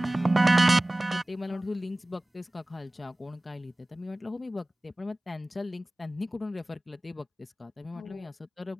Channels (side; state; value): both; normal; correlation 0.98